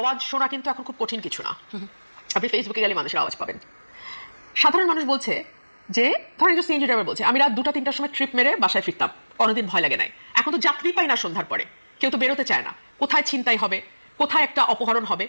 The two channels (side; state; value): both; inverted; correlation -1.00